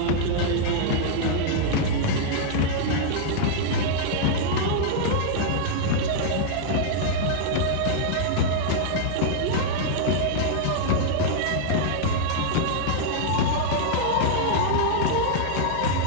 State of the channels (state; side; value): different; both; correlation -0.02